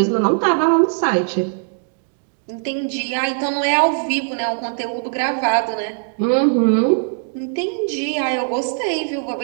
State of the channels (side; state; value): left; silent; digital silence